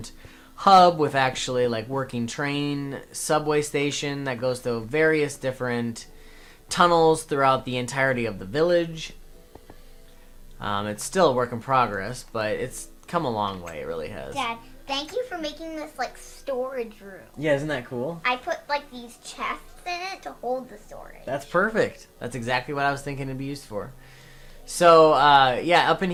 hub with actually like working train subway station that goes to various different tunnels throughout the entirety of the village. It's still a work in progress, but it's come a long way. It really has. Dad, thank you for making this like storage room. Yeah, isn't that cool? I put like these chests in it to hold the storage. That's perfect. That's exactly what I was thinking it'd be used for. So, yeah, up in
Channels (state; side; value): identical; both; correlation 1.00